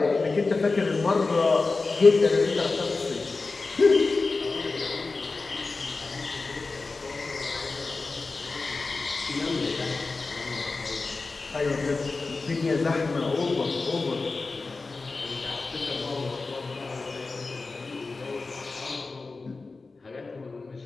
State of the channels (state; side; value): quieter; right; 3.8 dB